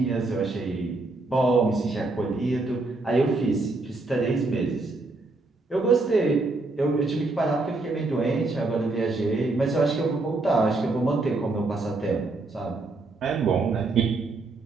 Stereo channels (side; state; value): left; quieter; 3.3 dB